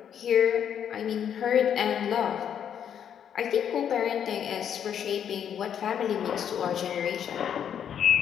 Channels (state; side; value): quieter; right; 8.8 dB